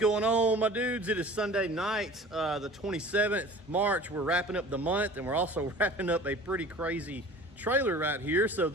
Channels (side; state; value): both; normal; correlation 0.43